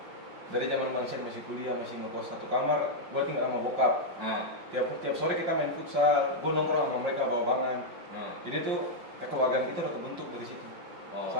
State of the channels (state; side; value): late; left; 5.6 ms